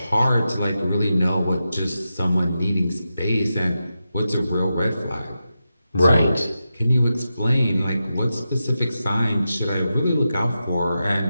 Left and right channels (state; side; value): inverted; both; correlation -0.90